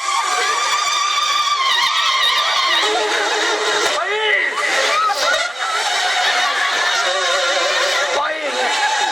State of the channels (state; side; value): normal; both; correlation 0.97